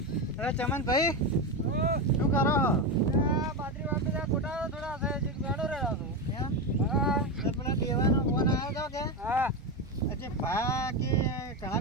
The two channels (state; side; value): normal; both; correlation 0.14